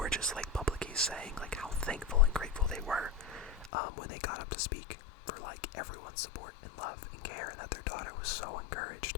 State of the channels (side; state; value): right; drops out; at 3.7 s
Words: just publicly saying how thankful and grateful they were when they got up to speak for everyone's support and love and care, and that their daughter was so